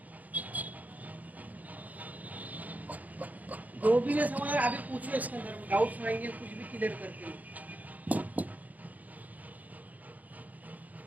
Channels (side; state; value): left; late; 0.078 ms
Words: जो भी नहीं समझ अभी पूछो, इसके अंदर में डाउट्स आएंगे, कुछ भी क्लियर करके।